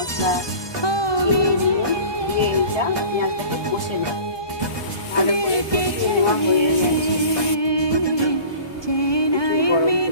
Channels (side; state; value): right; late; 1.2 ms